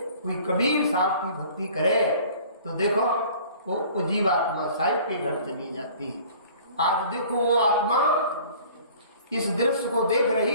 कोई कबीर साहब की भक्ति करे तो देखो वो जीवात्मा साहिब के घर चली जाती है। आज देखो वो आत्मा इस दृश्य को देख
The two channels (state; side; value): inverted; both; correlation -0.49